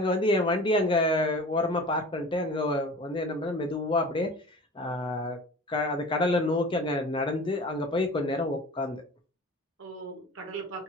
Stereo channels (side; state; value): both; normal; correlation 0.39